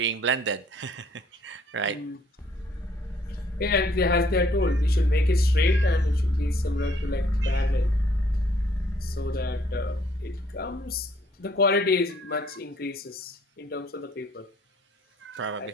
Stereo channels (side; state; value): both; normal; correlation 0.63